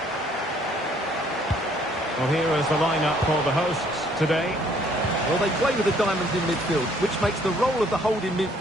Well, here is the lineup for the hosts today. Well, they play with the diamonds in midfield, which makes the role of the holding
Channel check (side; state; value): both; normal; correlation 0.63